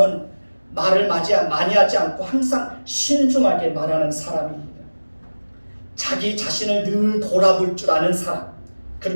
말을 많이 하지 않고 항상 신중하게 말하는 사람입니다. 자기 자신을 늘 돌아볼 줄 아는 사람,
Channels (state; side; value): inverted; both; correlation -1.00